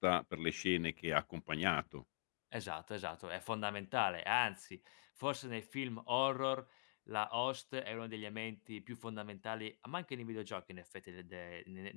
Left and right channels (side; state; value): right; silent; digital silence